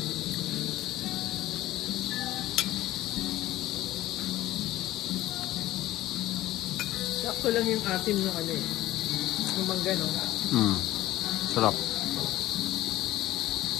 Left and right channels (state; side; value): quieter; right; 15.5 dB